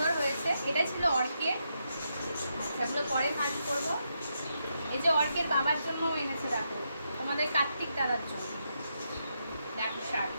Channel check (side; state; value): both; inverted; correlation -0.82